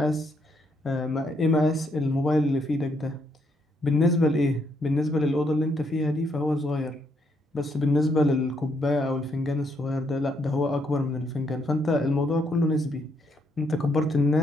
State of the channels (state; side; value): normal; both; correlation 0.74